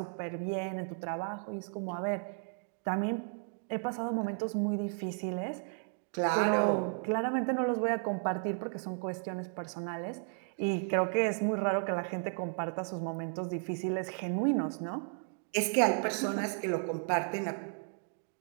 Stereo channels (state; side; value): silent; left; 55 dB below the other